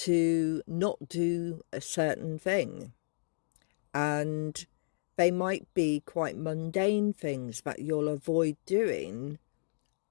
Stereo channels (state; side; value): silent; right; digital silence